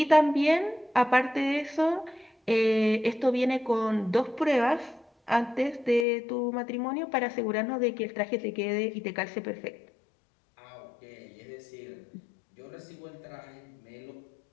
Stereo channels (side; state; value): right; drops out; at 6.1 s